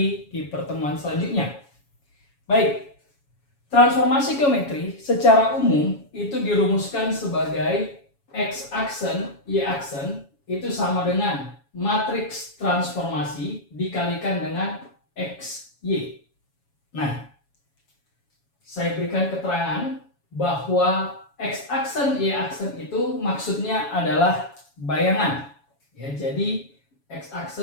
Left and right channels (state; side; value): late; right; 7.2 ms